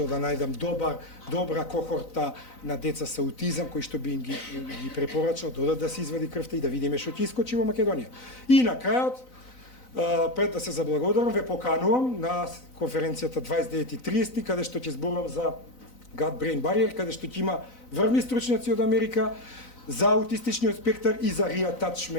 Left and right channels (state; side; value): late; right; 4.0 ms